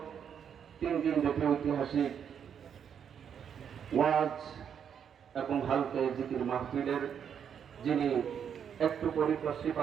3 দিন ব্যাপী ঐতিহাসিক ওয়াজ এবং হালকা জিকির মাহফিলের যিনি একটু পরিপ্রশ্রী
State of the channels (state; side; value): quieter; left; 8.0 dB